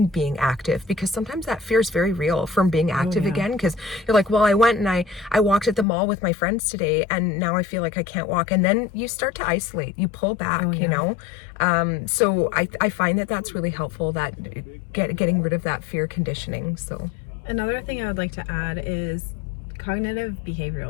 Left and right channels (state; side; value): drops out; right; at 5.9 s